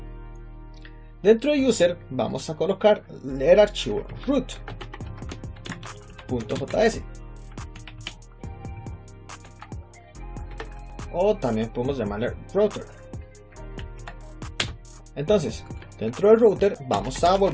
Dentro de user, vamos a colocar el archivo root.js. O también podemos llamarle router. Entonces, dentro del router vamos a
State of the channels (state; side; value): identical; both; correlation 1.00